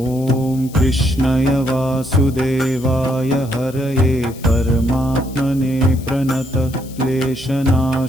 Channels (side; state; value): left; noise; hiss, 20 dB below the sound